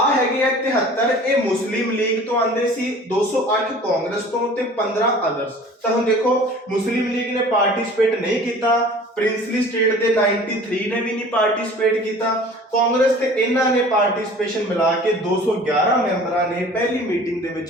ਹੈਗੇ ਆ 73, ਇਹ ਮੁਸਲਿਮ ਲੀਗ ਤੋਂ ਆਂਦੇ ਸੀ, 208 ਕਾਂਗਰਸ ਤੋਂ ਤੇ 15 ਅਦਰਸ। ਤਾਂ ਹੁਣ ਦੇਖੋ, ਮੁਸਲਿਮ ਲੀਗ ਨੇ ਪਾਰਟਿਸਿਪੇਟ ਨਹੀਂ ਕੀਤਾ, ਪ੍ਰਿੰਸਲੀ ਸਟੇਟ ਦੇ 93 ਨੇ ਵੀ ਨਹੀਂ ਪਾਰਟਿਸਿਪੇਟ ਕੀਤਾ, ਕਾਂਗਰਸ ਤੇ ਇਹਨਾਂ ਨੇ ਪਾਰਟਿਸਿਪੇਸ਼ਨ ਮਿਲਾ ਕੇ 211 ਮੈਂਬਰਾਂ ਨੇ ਪਹਿਲੀ ਮੀਟਿੰਗ ਦੇ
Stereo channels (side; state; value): both; normal; correlation 0.45